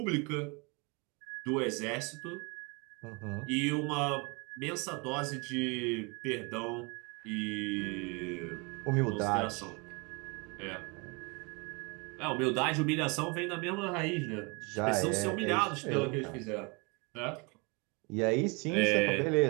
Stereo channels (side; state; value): left; quieter; 30.3 dB